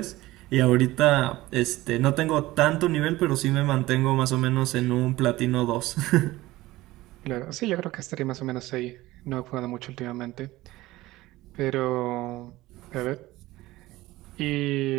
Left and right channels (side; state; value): left; quieter; 18.0 dB